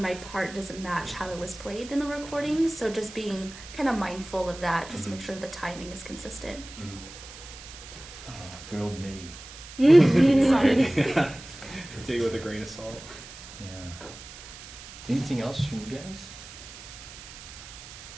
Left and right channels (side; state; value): right; noise; hiss, 15 dB below the sound